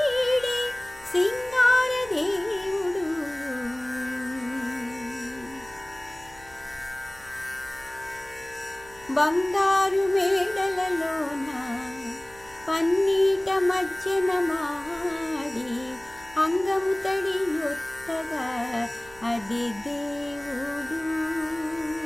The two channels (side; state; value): right; noise; hum, 23 dB below the sound